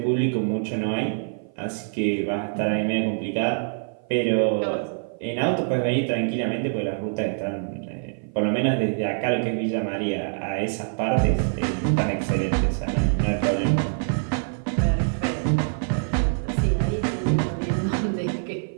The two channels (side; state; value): left; silent; 56 dB below the other